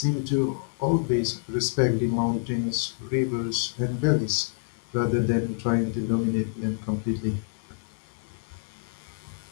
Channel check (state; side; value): silent; right; digital silence